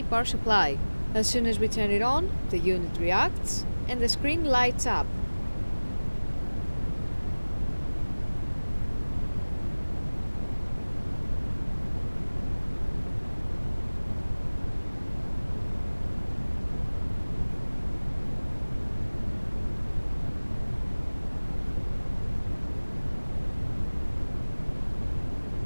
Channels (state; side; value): inverted; both; correlation -1.00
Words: power supply. As soon as we turn it on, the unit reacts and the screen lights up.